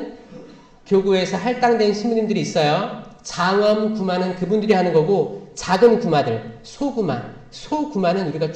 교구에서 할당된 신부님들이 있어요. 장엄 구마는 그분들이 하는 거고 작은 구마들, 소구마는 우리가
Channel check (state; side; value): identical; both; correlation 1.00